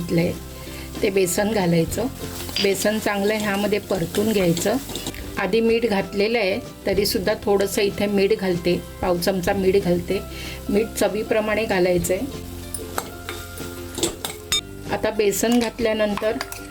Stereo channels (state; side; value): identical; both; correlation 1.00